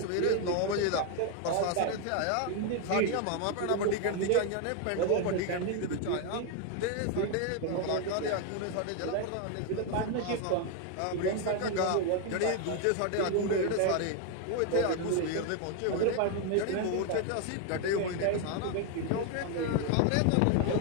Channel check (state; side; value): different; both; correlation 0.01